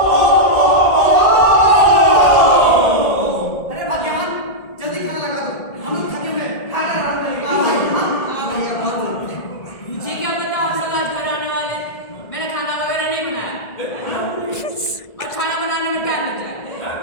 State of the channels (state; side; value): late; right; 1.8 ms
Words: अरे भाग्यवान, जल्दी खाना लगा दो, हम लोग थके हुए हैं, खाना आराम करेंगे। हाँ भैया, बहुत बढ़िया। मुझे क्या पता आप सब आज घर आने वाले, मैंने खाना वगैरह नहीं बनाया और खाना बनाने में टाइम लग जाएगा।